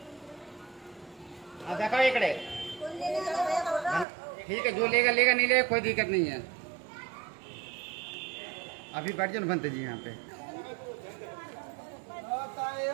देखो इकड़े, ठीक है, जो लेगा लेगा, नहीं लेगा कोई दिक्कत नहीं है। अभी बैठ जाओ बनते जी यहाँ पे।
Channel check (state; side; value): drops out; left; at 4.0 s